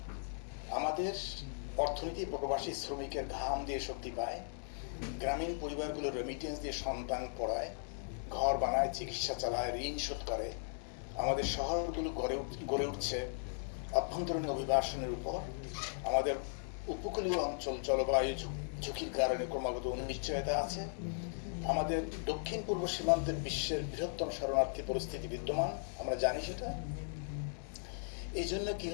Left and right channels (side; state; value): right; silent; 53 dB below the other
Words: আমাদের অর্থনীতি প্রবাসী শ্রমিকের ঘাম দিয়ে শক্তি পায়, গ্রামীণ পরিবারগুলো রেমিটেন্স দিয়ে সন্তান পড়ায়, ঘর বানায়, চিকিৎসা চালায়, ঋণ শোধ করে। আমাদের শহরগুলো গড়ে উঠছে অভ্যন্তরীণ অভিবাসনের উপর। আমাদের উপকূলীয় অঞ্চল জলবায়ু ঝুঁকির কারণে ক্রমাগত অনিশ্চয়তা আছে। আমাদের দক্ষিণ পূর্ব সীমান্তের বিশ্বের বৃহত্তম শরণার্থী পরিস্থিতি বিদ্যমান, আমরা জানি সেটা। এই জন্য কি